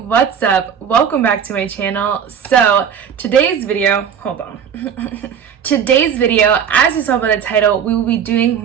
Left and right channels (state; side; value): quieter; left; 7.9 dB